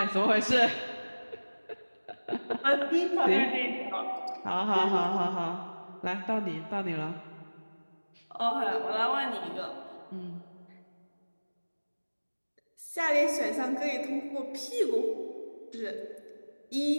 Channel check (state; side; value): inverted; both; correlation -1.00